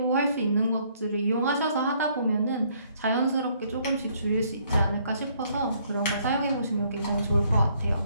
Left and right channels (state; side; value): inverted; both; correlation -0.66